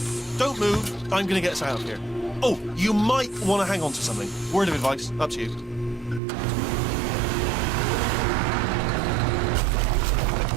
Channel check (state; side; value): drops out; left; at 6.2 s